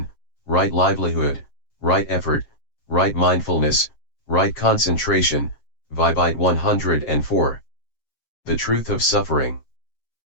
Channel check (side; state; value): right; late; 7.6 ms